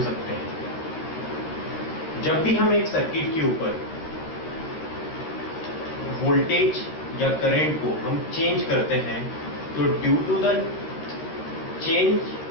सकते हैं। जब भी हम एक सर्किट के ऊपर वोल्टेज या करंट को हम चेंज करते हैं तो due to the change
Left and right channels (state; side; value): late; right; 13 ms